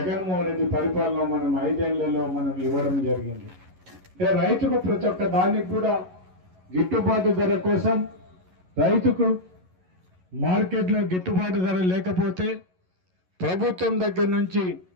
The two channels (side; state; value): left; late; 11 ms